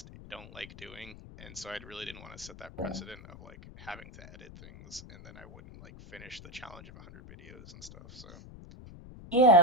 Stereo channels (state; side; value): noise; left; rumble, 17 dB below the sound